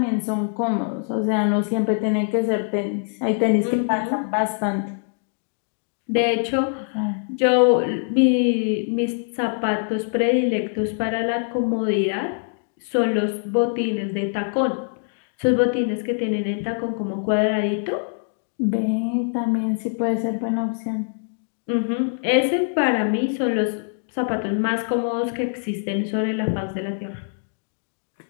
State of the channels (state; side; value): silent; right; 60 dB below the other